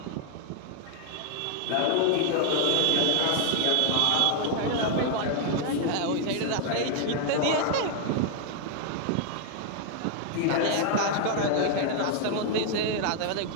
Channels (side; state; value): both; different; correlation 0.00